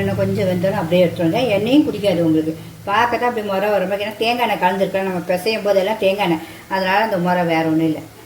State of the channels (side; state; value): both; identical; correlation 1.00